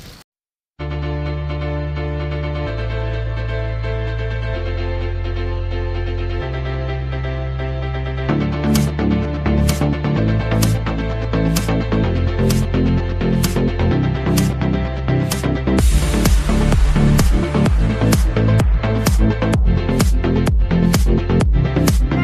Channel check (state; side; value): identical; both; correlation 1.00